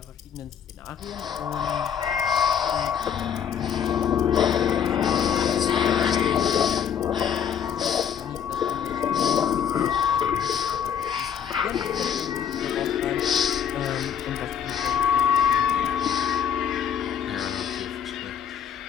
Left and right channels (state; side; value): quieter; right; 8.4 dB